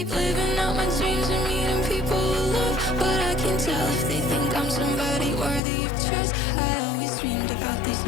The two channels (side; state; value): right; drops out; at 5.6 s